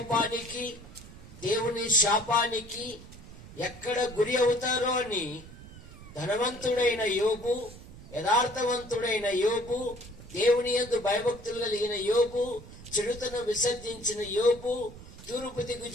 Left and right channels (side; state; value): right; noise; rumble, 17 dB below the sound